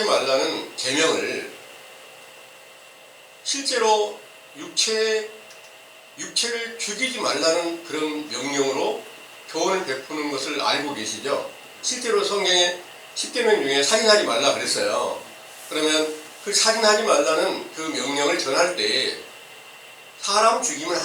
말라는 계명을 실제로 육체를 죽이지 말라는 그런 명령으로 교훈을 베푸는 것을 알고 계시죠? 실제로 성경에 10계명 중에 살인하지 말라 그랬어요. 그러면 그 살인하지 말라는 그 명령을 전할 때 사람 죽이면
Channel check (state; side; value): identical; both; correlation 1.00